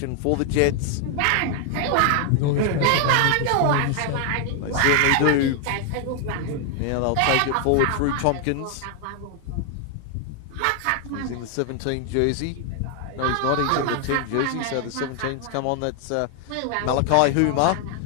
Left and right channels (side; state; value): both; different; correlation 0.00